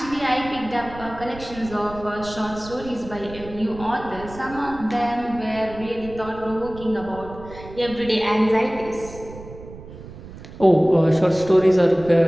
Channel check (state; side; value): noise; right; rumble, 15 dB below the sound